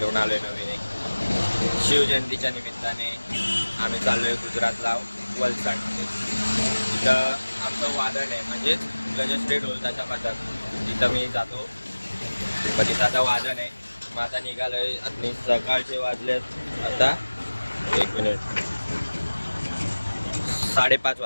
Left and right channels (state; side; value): inverted; both; correlation -1.00